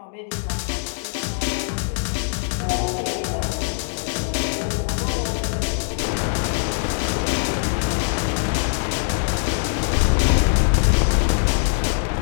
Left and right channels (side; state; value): right; silent; digital silence